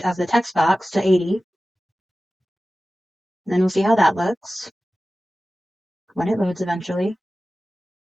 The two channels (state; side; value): normal; both; correlation 0.96